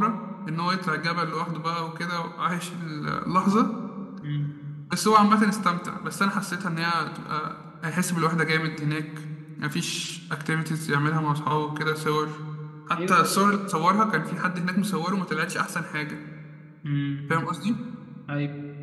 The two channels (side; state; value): both; identical; correlation 1.00